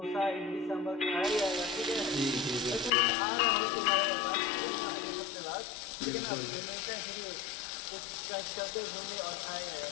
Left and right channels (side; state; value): right; drops out; at 2.9 s